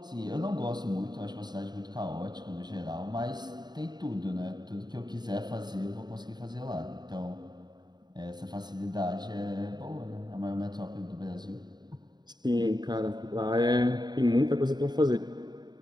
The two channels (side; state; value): left; late; 0.20 ms